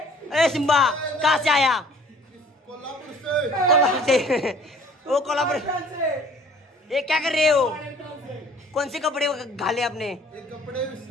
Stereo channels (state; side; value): normal; both; correlation 0.53